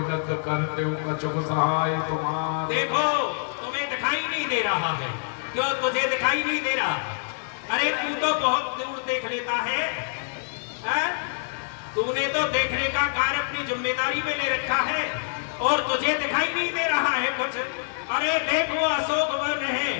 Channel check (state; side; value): silent; right; 56 dB below the other